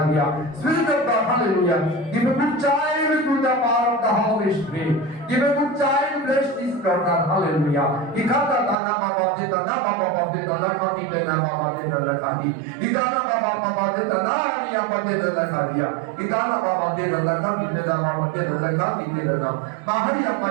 Spirit of God, hallelujah. Give a good child to the power of the Holy Spirit. Give a good child, bless this daughter, hallelujah. Ikata na baba deta na baba deta na kati na baba deta na kati. Ikana baba deta na hari baba deta na kaliya. Ikana baba deta na kati na baba deta na kati na. Mahari baba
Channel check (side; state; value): left; drops out; at 8.8 s